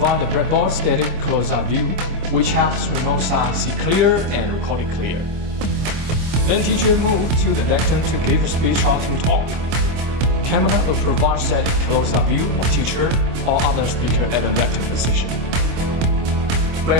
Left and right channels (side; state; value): left; late; 25 ms